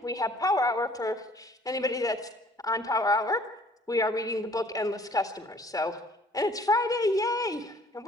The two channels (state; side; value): normal; both; correlation 0.56